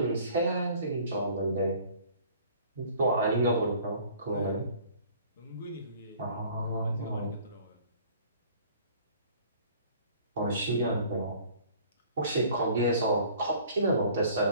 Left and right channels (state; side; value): inverted; both; correlation -0.52